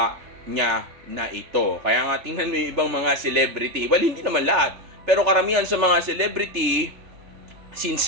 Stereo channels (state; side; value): late; left; 3.4 ms